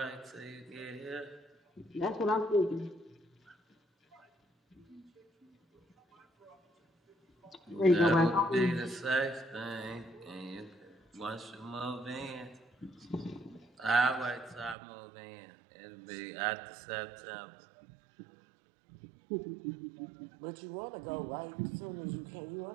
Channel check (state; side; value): drops out; left; at 14.8 s